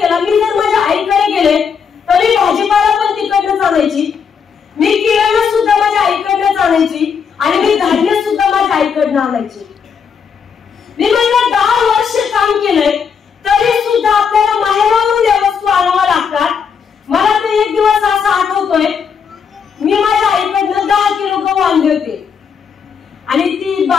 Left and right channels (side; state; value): right; quieter; 6.5 dB